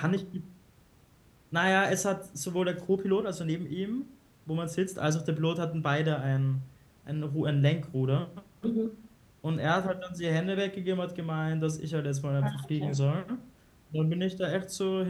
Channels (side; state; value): both; identical; correlation 1.00